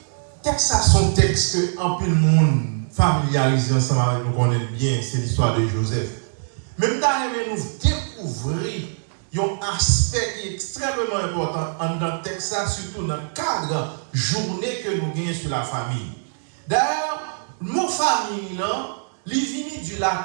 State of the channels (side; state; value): left; silent; digital silence